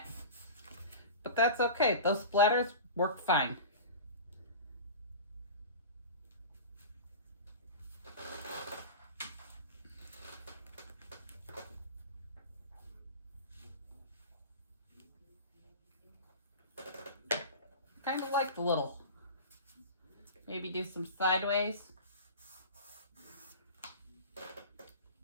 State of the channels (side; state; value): both; inverted; correlation -0.33